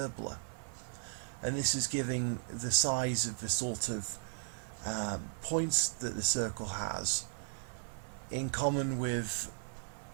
and this is giving the size of the sort of points that the circle has in common with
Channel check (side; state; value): left; silent; 54 dB below the other